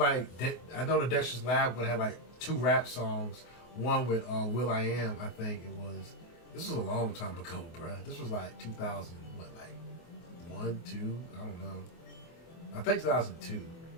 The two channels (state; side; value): late; right; 24 ms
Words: the Dexter's Lab would have like 2 rap songs. One with Will I Am, I think it was. This was a long time ago, bruh. This was like 2000, what, like 1, 2? I don't know. I think 2002.